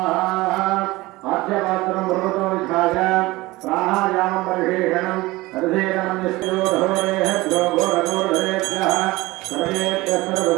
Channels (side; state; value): left; quieter; 20.1 dB